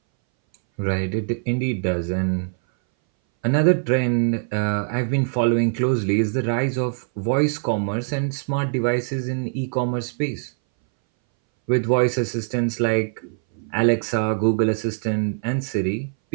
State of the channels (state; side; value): silent; left; 61 dB below the other